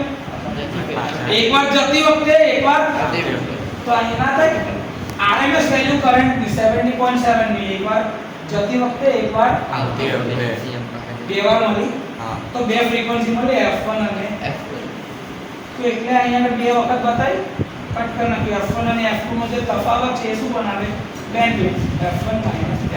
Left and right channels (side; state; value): both; identical; correlation 1.00